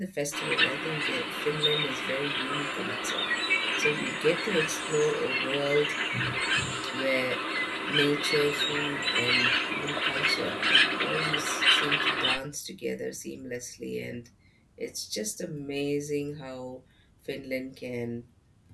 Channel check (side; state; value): both; identical; correlation 1.00